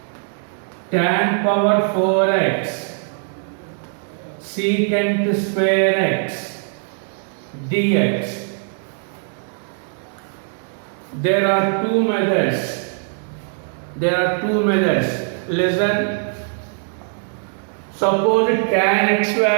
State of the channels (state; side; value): silent; left; 56 dB below the other